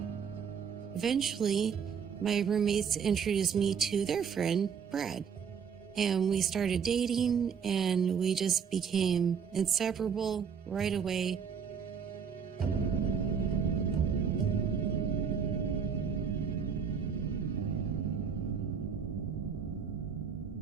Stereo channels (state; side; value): quieter; left; 6.9 dB